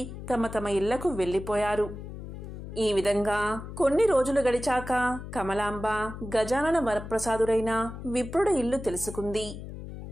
తమ తమ ఇళ్లకు వెళ్లిపోయారు. ఈ విధంగా కొన్ని రోజులు గడిచాక కమలాంబ గజానన వరప్రసాదుడైన విప్రుడి ఇల్లు తెలుసుకుంది.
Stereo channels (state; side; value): noise; left; hum, 10 dB below the sound